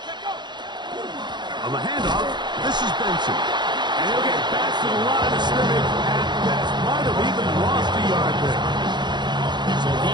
On the handoff, this is Benson. And he'll get back to the line of scrimmage at best. Might have even lost a yard there.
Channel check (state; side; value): late; left; 0.21 ms